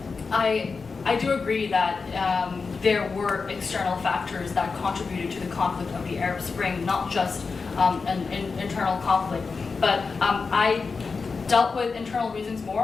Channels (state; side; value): quieter; right; 4.7 dB